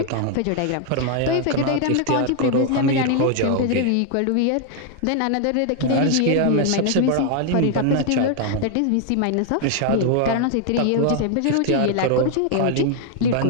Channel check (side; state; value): both; different; correlation 0.00